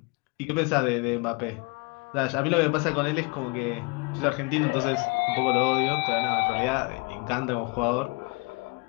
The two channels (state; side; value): quieter; right; 29.0 dB